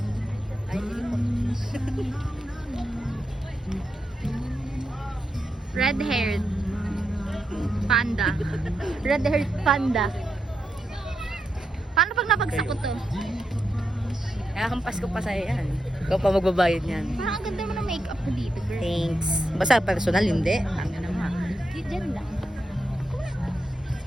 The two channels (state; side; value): normal; both; correlation 0.85